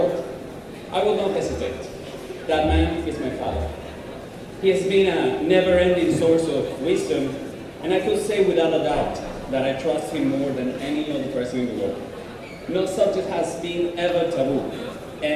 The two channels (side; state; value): both; identical; correlation 1.00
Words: I would not hesitate. That man is my father. He has been a never-ending source of wisdom, and I could say without a doubt that I trust him more than any other person in the world. No subject has been ever taboo,